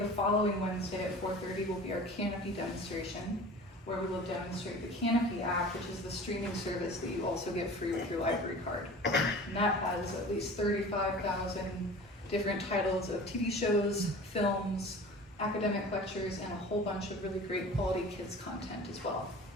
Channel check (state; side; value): normal; both; correlation 0.40